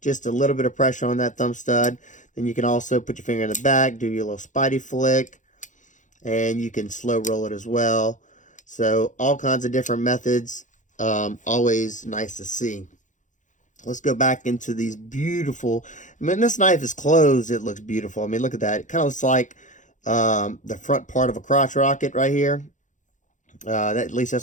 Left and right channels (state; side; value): late; right; 0.36 ms